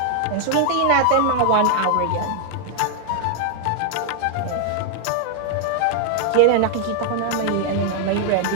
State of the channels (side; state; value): both; different; correlation 0.00